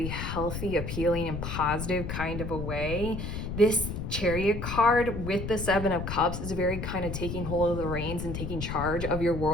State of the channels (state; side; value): noise; left; rumble, 5 dB below the sound